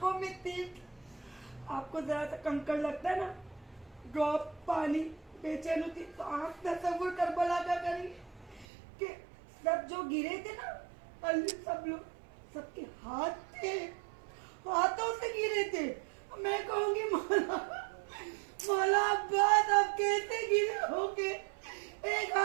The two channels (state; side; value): drops out; left; at 8.7 s